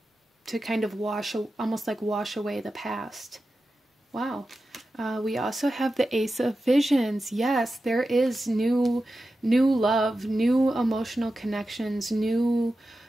to kind of almost like wash away the past. Wow. We also have the Ace of Visions. Yes, there is new love, new emotional connections, new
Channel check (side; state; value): both; normal; correlation 0.92